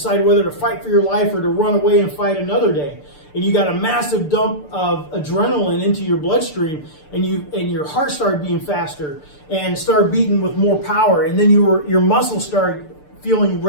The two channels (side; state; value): right; late; 6.8 ms